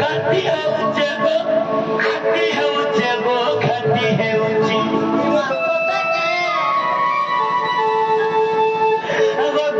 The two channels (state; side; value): identical; both; correlation 1.00